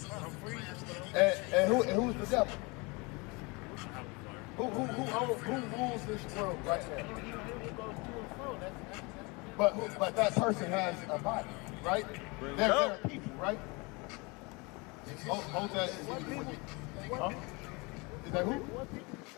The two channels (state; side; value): quieter; right; 27.5 dB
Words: And who's the devil? Who rules this world right now? But that person has a body, right? There are people, right? Hold that. Huh? Is that who?